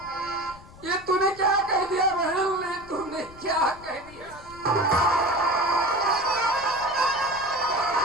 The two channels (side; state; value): left; noise; rumble, 20 dB below the sound